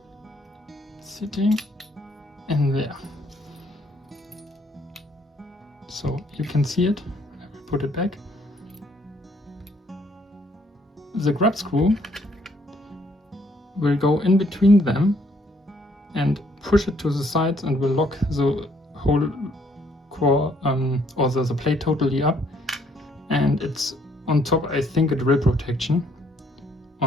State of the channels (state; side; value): normal; both; correlation 0.67